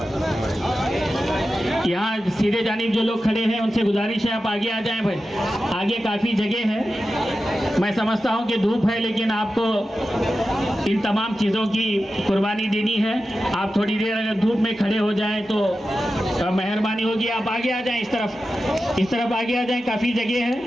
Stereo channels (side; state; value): both; normal; correlation 0.92